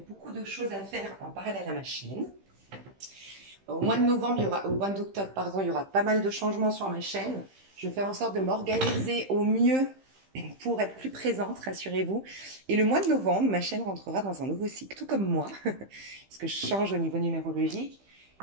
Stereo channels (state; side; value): late; left; 15 ms